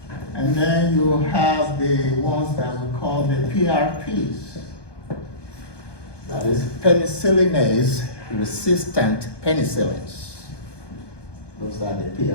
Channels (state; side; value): late; right; 1.2 ms